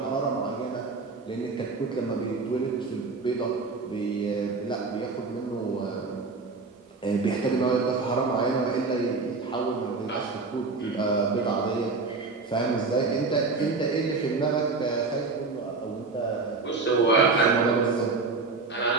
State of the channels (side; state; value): left; quieter; 4.0 dB